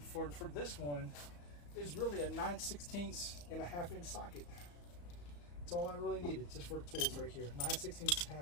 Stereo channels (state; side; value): late; right; 34 ms